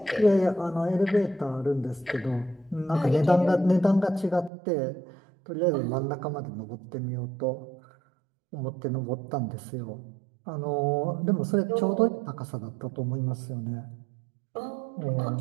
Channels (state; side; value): drops out; left; at 4.5 s